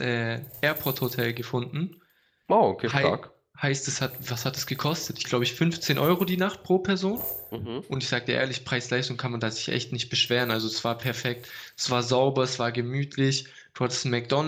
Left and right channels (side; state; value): both; identical; correlation 1.00